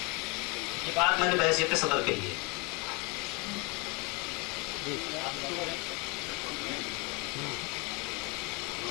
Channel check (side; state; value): right; quieter; 29.6 dB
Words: ये बात मैंने बहसियत सदर कही है।